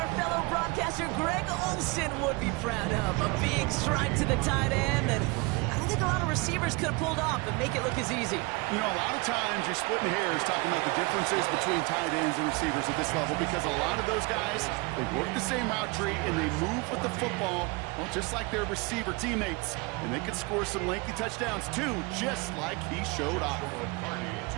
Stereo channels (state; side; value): quieter; left; 26.7 dB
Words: fellow broadcaster Greg Olsen would be proud of. A big strike to the tight end, and I don't think think a lot of receivers could have pulled off and make it look as easy. You know, a lot of times you're splitting hairs talking about the differences between tight ends and receivers at this level because a lot of those guys, they work the same route tree and they move with the football, well, just like their receiver teammates. And they could score some lengthy touchdowns too, just like he showed off.